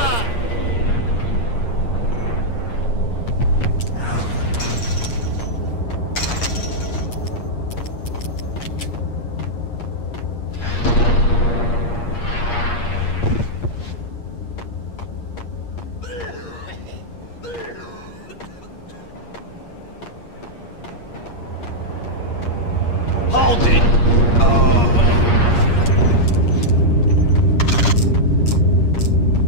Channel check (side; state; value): right; late; 8.5 ms